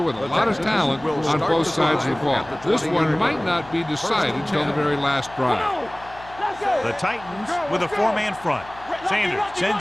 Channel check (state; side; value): noise; left; hum, 20 dB below the sound